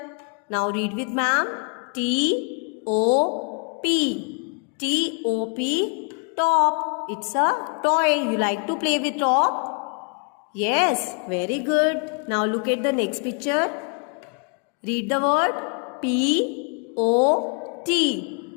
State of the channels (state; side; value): quieter; right; 39.0 dB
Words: Now read with ma'am. T-O-P. T-O-P. Top. It's a toy. You like to play with top? Yes. Very good. Now look at the next picture. Read the word. P-O-T.